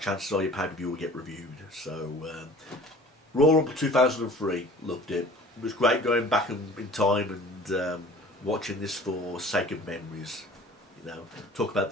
chances are your pay-per-view will get reviewed. So Royal Rumble 2003, loved it. It was great going back in time and watching this for sake of memories. You know, talk about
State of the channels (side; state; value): both; normal; correlation 0.46